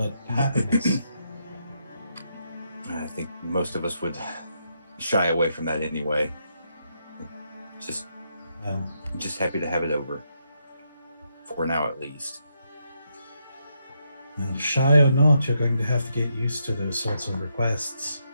happiness. I think most of us would shy away from that anyway. Just happy to have it over. For now, at least. Well, shy or not, you're going to have to get used to those sorts of requests.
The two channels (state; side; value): inverted; both; correlation -0.80